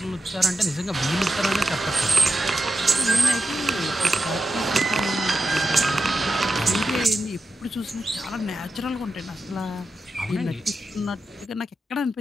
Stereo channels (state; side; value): normal; both; correlation 0.89